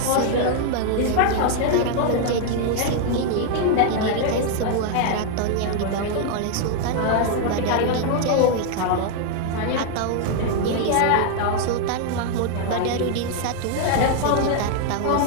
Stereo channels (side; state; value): both; different; correlation 0.00